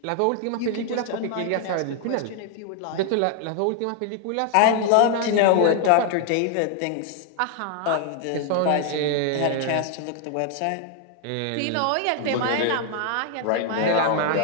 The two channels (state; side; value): different; both; correlation 0.00